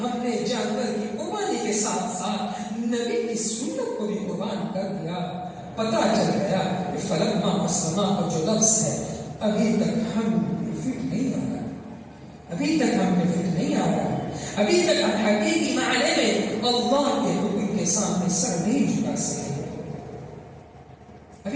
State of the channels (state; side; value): identical; both; correlation 1.00